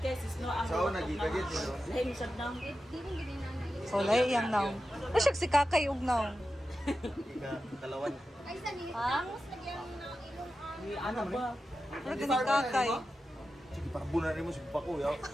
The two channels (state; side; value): normal; both; correlation 0.92